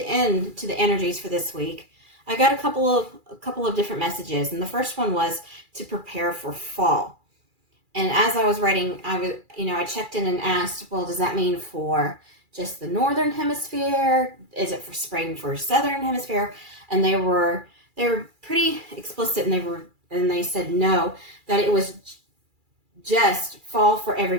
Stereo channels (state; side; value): late; left; 2.4 ms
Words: to the energies for this week, I got a couple of different messages, and the first one was to prepare for fall. And as I was writing, I checked in and asked, well, does that mean for just the northern hemisphere? Is it for spring for southern hemisphere? And they were pretty explicit, and they said no, that it was just fall for